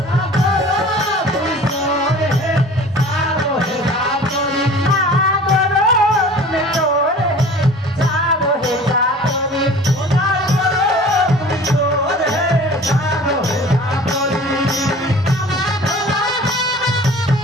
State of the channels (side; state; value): both; normal; correlation 0.43